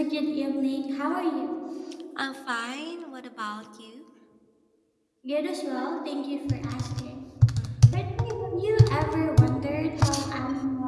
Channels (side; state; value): both; identical; correlation 1.00